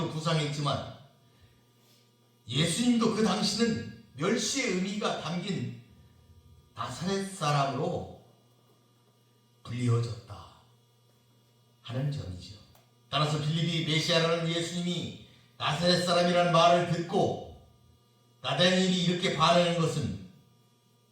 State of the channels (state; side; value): identical; both; correlation 1.00